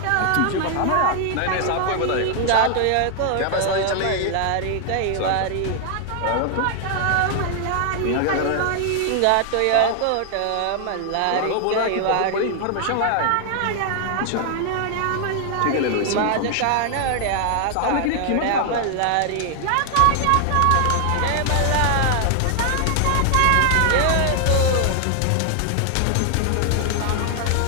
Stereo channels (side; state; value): both; different; correlation 0.00